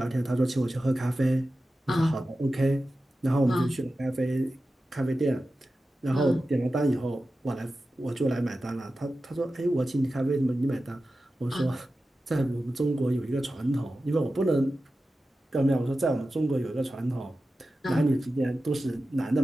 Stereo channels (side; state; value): both; normal; correlation 0.93